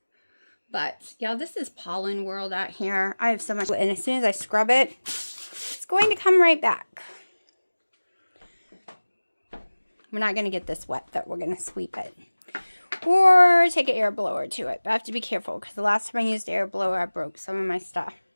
But, yeah, this is pollen world out here. I have so much, and as soon as I scrub it, it's going to come right back. We're not going to get this wet, though. We're going to sweep it. Or take an air blower to it. But I have to be careful, because the last time I used air blower, I broke some of my stuff.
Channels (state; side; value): inverted; both; correlation -1.00